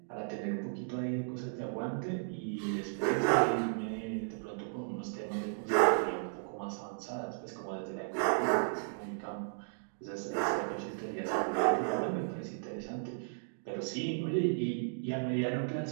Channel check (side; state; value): left; silent; digital silence